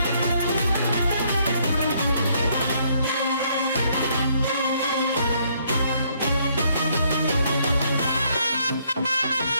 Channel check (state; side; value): inverted; both; correlation -0.69